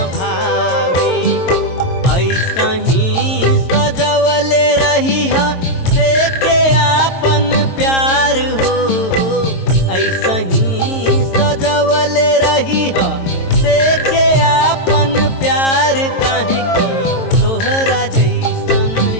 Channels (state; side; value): late; right; 22 ms